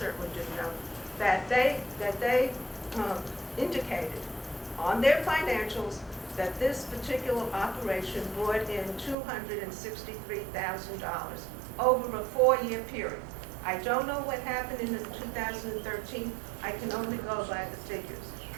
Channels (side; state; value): left; drops out; at 9.2 s